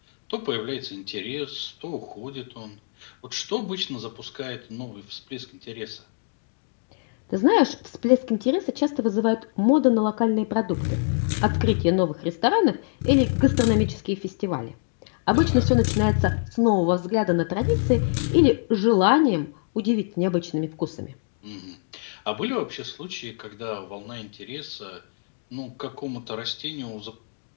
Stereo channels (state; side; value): silent; right; 62 dB below the other